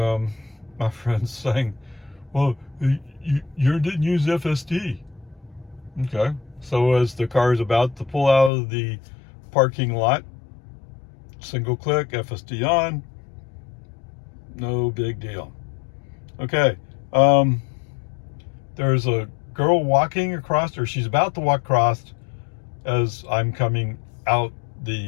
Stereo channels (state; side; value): drops out; right; at 8.5 s